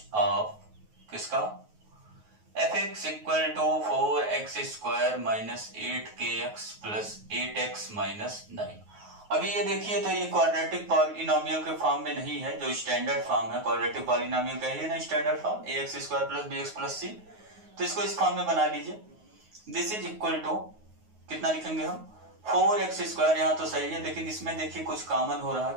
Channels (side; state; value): left; late; 9.4 ms